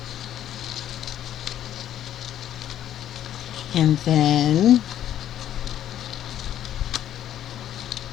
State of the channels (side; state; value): right; quieter; 11.2 dB